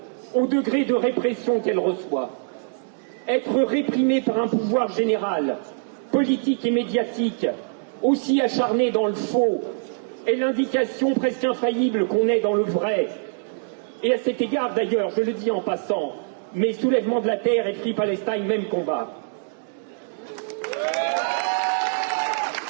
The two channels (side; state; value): left; silent; digital silence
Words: au degré de répression qu'elle reçoit. Être réprimé par un pouvoir général, politique et médiatique, aussi acharné dans le faux, est l'indication presque infaillible qu'on est dans le vrai. Et à cet égard, d'ailleurs, je le dis en passant, mais Soulèvement de la Terre et Free Palestine, même combat.